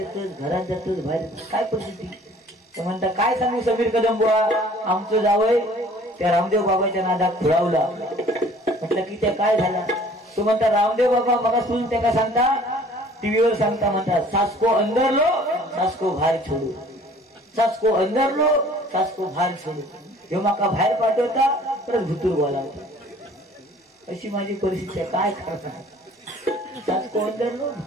घरात जातस बाहेर येतस, काय परिस्थिती? ते म्हणता काय सांगू समीर कदम बुवा, आमचं जावय त्या रामदेव बाबाच्या नादात खुळावला. म्हटलं की त्या काय झाला? तो म्हणता रामदेव बाबा मला सुन त्या सांगता, टीव्हीवर सांगता, म्हणतात सासको अंदर लो सासको बाहेर छोडू, सासको अंदर लो सासको बाहेर छोडू. हे माका बाहेर पाठवता परत भुतूर बोलावता. अशी माझी परिस्थिती आहे, काय करणार? सासको अंदर लो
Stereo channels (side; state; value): both; normal; correlation 0.52